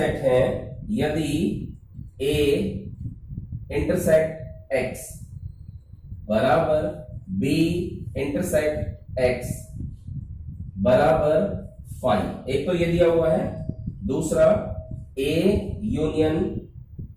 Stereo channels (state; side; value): identical; both; correlation 1.00